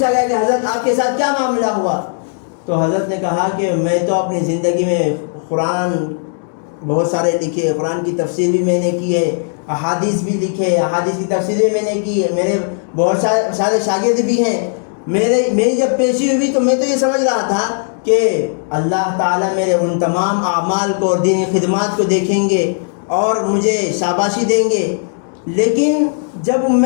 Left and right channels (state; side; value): silent; right; digital silence